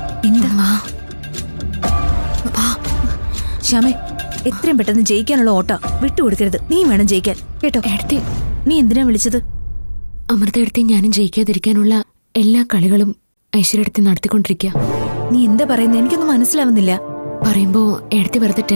എന്താ? ശ്യാമേ, എത്രയും പെട്ടെന്ന് ജയിക്കാനുള്ള ഓട്ട വിട്ടുകൊടുക്കരുത്. നീ വേണം ജയിക്കാൻ, കേട്ടോ? എടുത്തി നീ എന്തിനാ വിളിച്ചത്? അമൃത എടുത്തി ഞാനും ജയിക്കാതിരിക്കാനുള്ള എല്ലാ കളികളും ഐശ്വര്യടുത്തി നടത്തിക്കൊണ്ടിരിക്കുക. നീ എന്താ പറയുന്നത്? എനിക്കൊന്നും മനസ്സിലാവുന്നില്ല. പറയുമ്പോ എടുത്തി വെറുതെ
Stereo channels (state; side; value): inverted; both; correlation -1.00